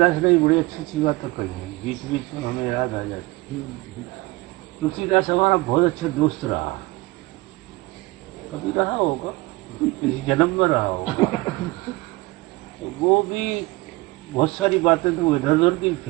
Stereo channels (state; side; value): quieter; left; 22.2 dB